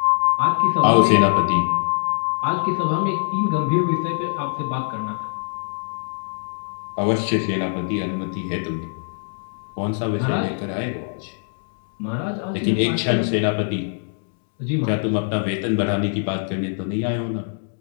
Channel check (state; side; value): silent; right; digital silence